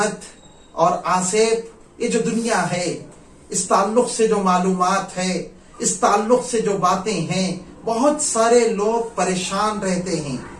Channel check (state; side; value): identical; both; correlation 1.00